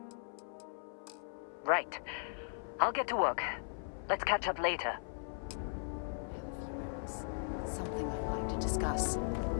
Right. I'll get to work. Let's catch up later. When you have a few moments, there's something I'd like to discuss.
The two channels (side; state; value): right; silent; 52 dB below the other